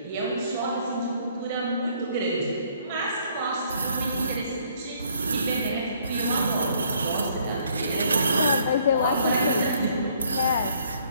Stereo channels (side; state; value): both; inverted; correlation -0.64